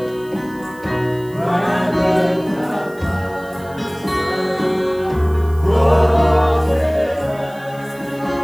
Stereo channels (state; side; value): noise; right; hiss, 25 dB below the sound